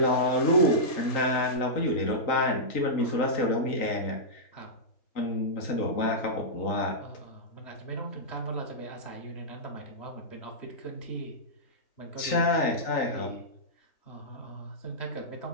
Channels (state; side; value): late; right; 3.9 ms